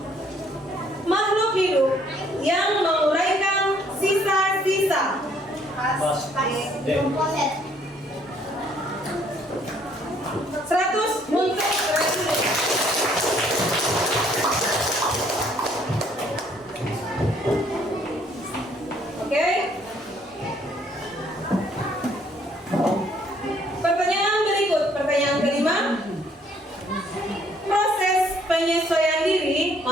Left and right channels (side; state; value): both; normal; correlation 0.64